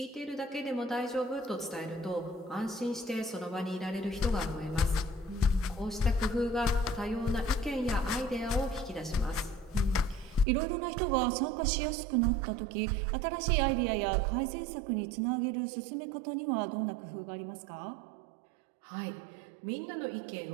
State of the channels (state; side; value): drops out; left; at 10.5 s